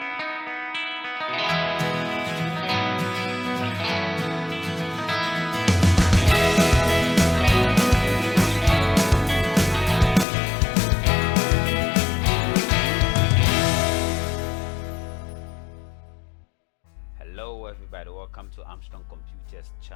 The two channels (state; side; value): drops out; right; at 10.2 s